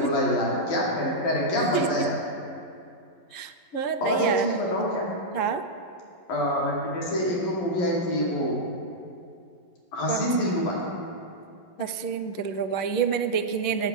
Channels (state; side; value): late; right; 11 ms